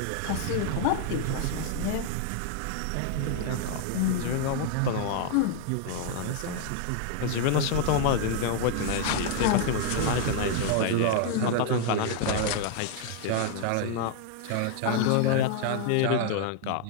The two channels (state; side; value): different; both; correlation 0.00